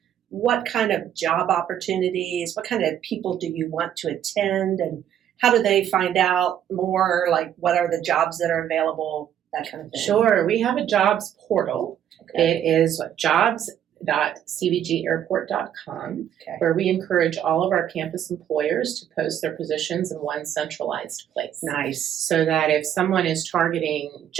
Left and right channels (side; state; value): left; quieter; 10.2 dB